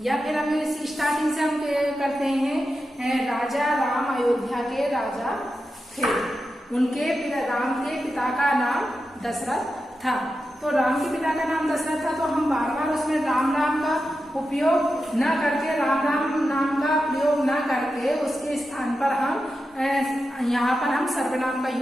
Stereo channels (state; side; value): normal; both; correlation 0.90